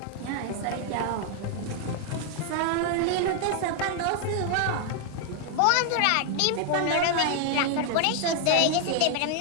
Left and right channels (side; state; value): both; different; correlation 0.00